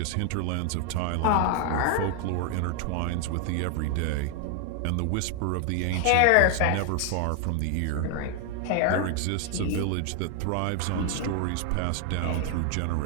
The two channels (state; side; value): different; both; correlation 0.00